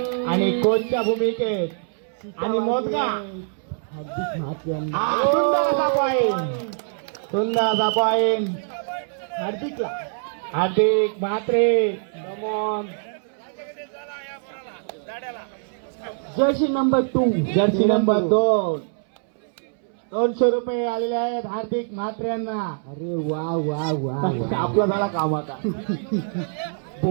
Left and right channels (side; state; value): left; silent; 63 dB below the other